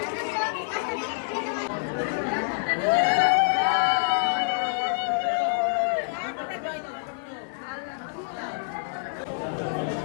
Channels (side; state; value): right; silent; digital silence